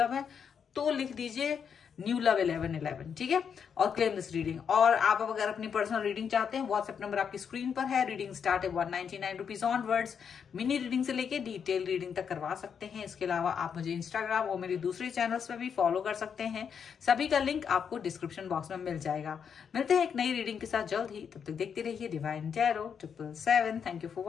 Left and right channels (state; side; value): quieter; right; 7.1 dB